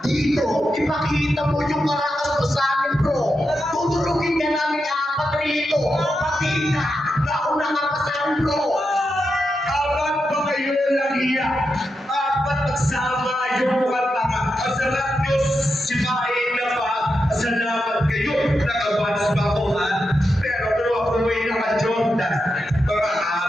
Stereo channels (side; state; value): both; normal; correlation 0.87